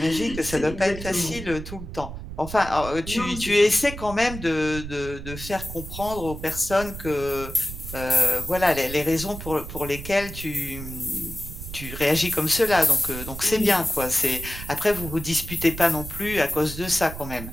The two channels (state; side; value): noise; right; rumble, 10 dB below the sound